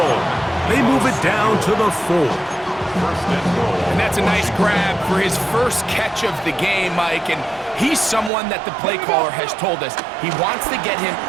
They move it down to the 4. And that's a nice grab for his first catch of the game, Mike. And he's someone that the play caller has told us he wants to get him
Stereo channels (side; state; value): left; drops out; at 8.3 s